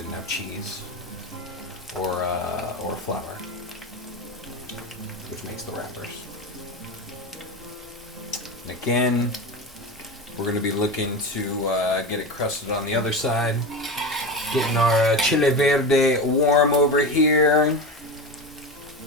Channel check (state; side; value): normal; both; correlation 0.22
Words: have cheese or flour, which makes the wrappers. And again, we're going to be looking to get it crusted on the other side. Getting our chile verde warm over here.